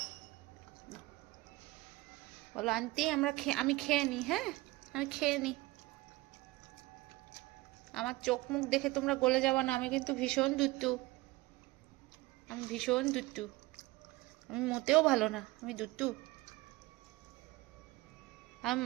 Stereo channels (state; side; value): quieter; left; 20.3 dB